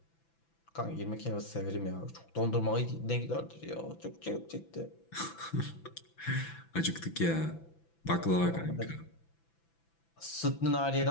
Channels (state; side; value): late; right; 6.0 ms